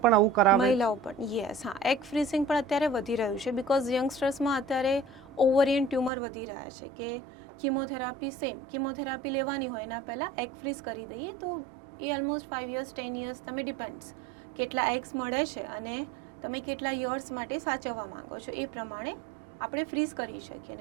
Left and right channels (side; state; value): left; drops out; at 6.1 s